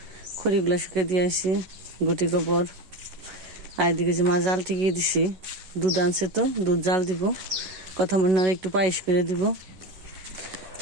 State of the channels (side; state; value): left; late; 11 ms